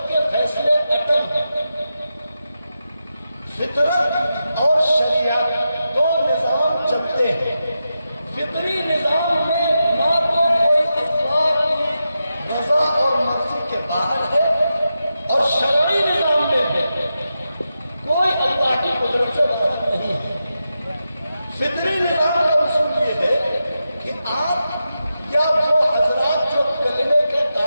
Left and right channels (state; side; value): inverted; both; correlation -0.89